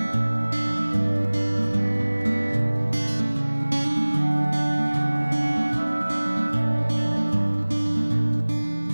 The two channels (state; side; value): inverted; both; correlation -1.00